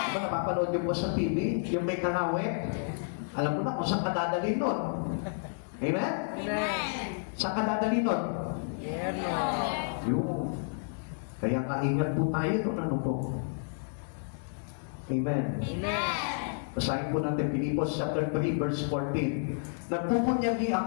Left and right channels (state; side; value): silent; right; digital silence